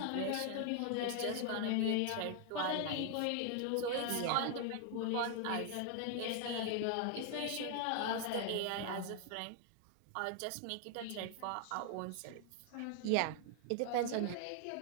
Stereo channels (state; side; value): different; both; correlation 0.00